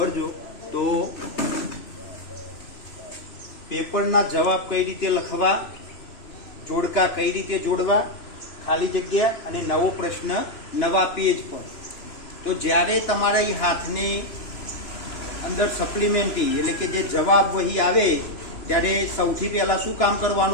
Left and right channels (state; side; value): late; right; 3.0 ms